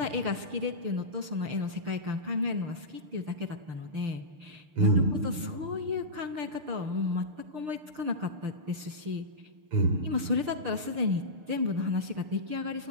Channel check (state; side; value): late; left; 6.7 ms